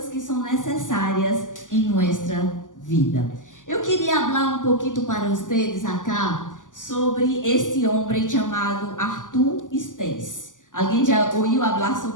que são necessárias em nossa vida. Eu queria falar um pouquinho para vocês acá sobre este homem chamado Arthur Stace. Alguém já ouviu falar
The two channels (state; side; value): late; right; 0.88 ms